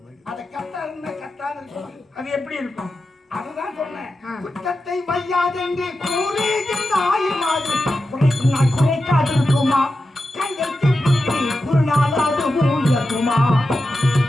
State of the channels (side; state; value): both; normal; correlation 0.91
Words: அதை கத்தாருன்னா கத்தாது இருக்கும். அது எப்படி இருக்கும்? அதுதான் சொன்னேன். குற்றத்தை மையாதென்று கூறுகின்றாய் மாதிரி குறைக்கும் நாய் குறைக்காது இருக்குமா? கையெழுத்து புள்ளி குறுநாளாது மூழ்கட்டுமா?